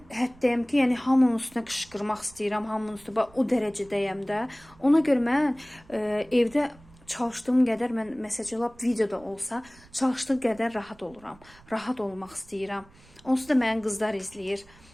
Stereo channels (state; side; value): noise; right; rumble, 25 dB below the sound